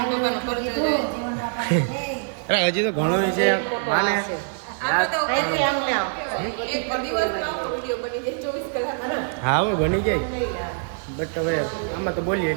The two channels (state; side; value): silent; left; digital silence